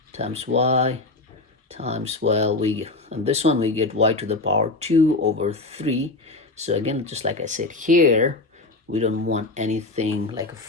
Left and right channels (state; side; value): quieter; right; 3.2 dB